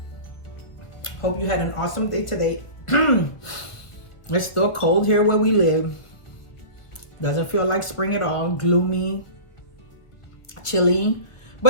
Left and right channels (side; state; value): right; late; 1.2 ms